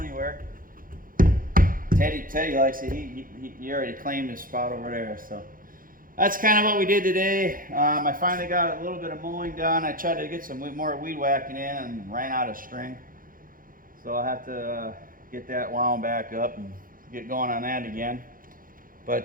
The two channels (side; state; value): left; late; 0.40 ms